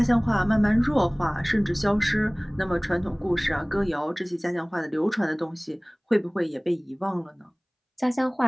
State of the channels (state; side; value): identical; both; correlation 1.00